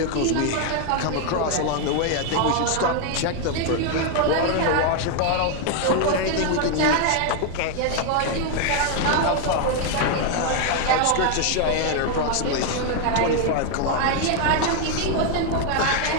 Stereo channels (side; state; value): both; different; correlation 0.01